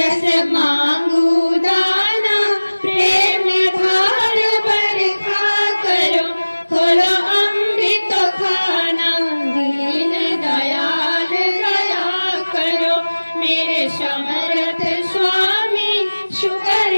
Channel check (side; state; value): both; inverted; correlation -1.00